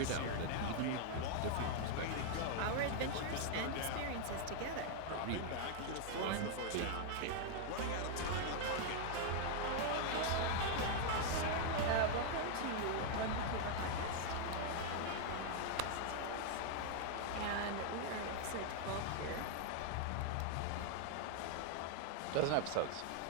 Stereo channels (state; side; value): different; both; correlation 0.00